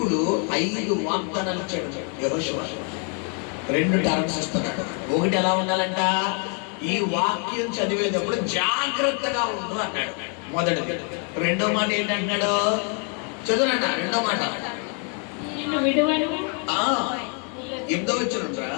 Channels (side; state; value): right; quieter; 40.0 dB